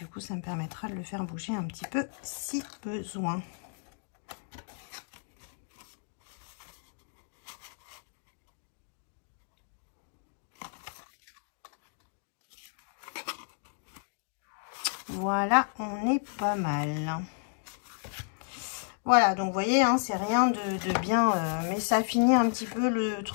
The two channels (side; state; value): right; silent; digital silence